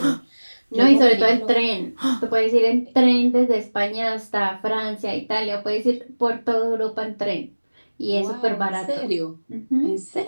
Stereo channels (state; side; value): inverted; both; correlation -1.00